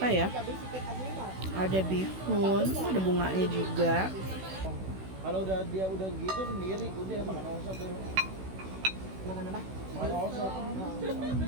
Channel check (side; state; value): left; late; 16 ms